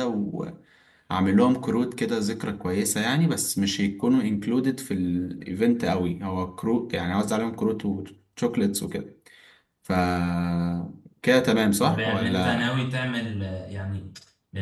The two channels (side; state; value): both; identical; correlation 1.00